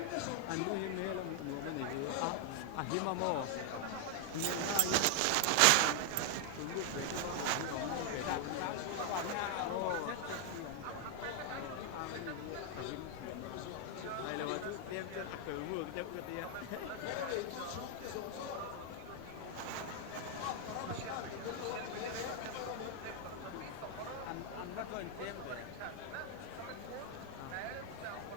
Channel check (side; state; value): both; different; correlation 0.00